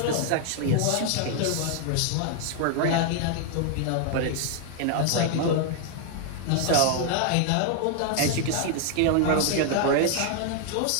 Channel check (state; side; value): different; both; correlation 0.00